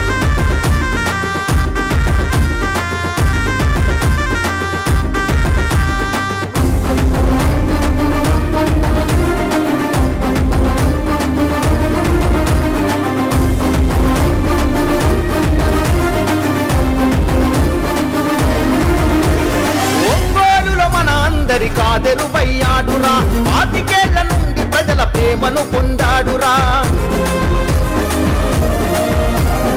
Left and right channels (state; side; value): identical; both; correlation 1.00